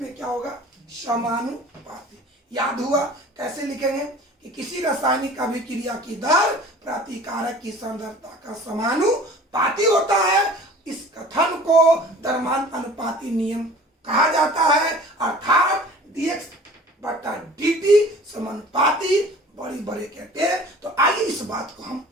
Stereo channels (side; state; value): both; normal; correlation 0.45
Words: में क्या होगा? समानुपाती। याद हुआ? कैसे लिखेंगे कि किसी रासायनिक अभिक्रिया की दर प्रतिकारक की सांद्रता का समानुपाती होता है। इस कथन को द्रव्यमान अनुपाती नियम कहा जाता है, अर्थात dx बटा dt समानुपाती बड़ी ब्रैकेट है। तो आइए इस बात को हम